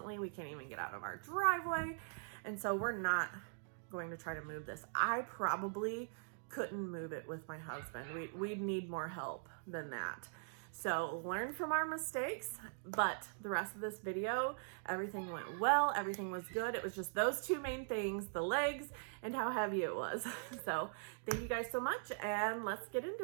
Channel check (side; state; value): left; silent; digital silence